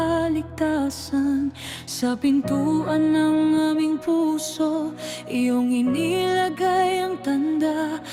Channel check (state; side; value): identical; both; correlation 1.00